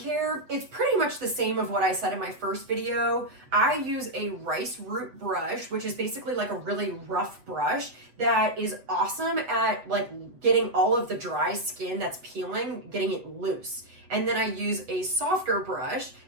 it's pretty much the same of what I said in my first video. I use a rice root brush, which is basically like a really rough brush that is awesome at like getting all of the dry skin that's peeling, getting it loose. And then I use a softer brush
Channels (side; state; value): left; late; 8.0 ms